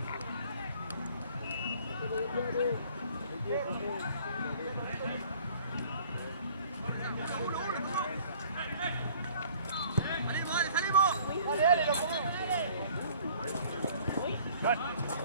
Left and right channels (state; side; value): inverted; both; correlation -0.54